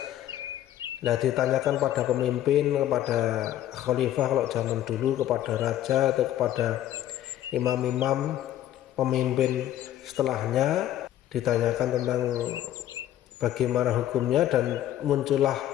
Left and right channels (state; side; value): quieter; right; 12.5 dB